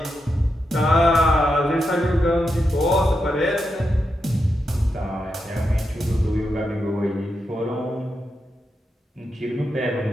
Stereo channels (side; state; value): both; normal; correlation 0.86